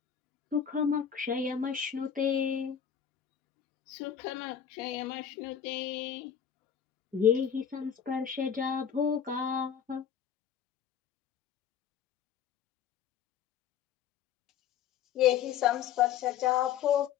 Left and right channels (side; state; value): right; quieter; 8.5 dB